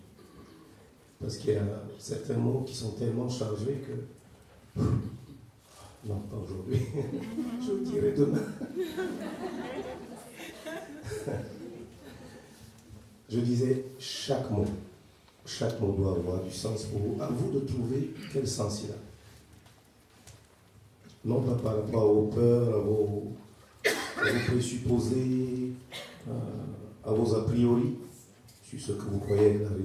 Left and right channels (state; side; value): identical; both; correlation 1.00